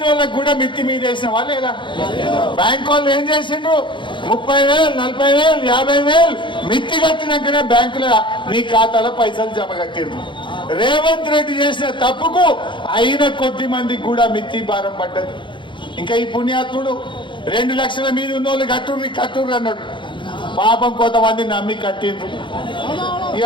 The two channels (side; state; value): right; late; 0.23 ms